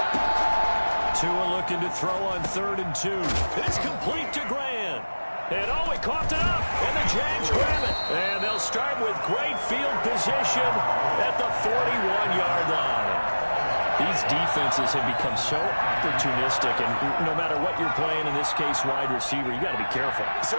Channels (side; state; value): both; inverted; correlation -1.00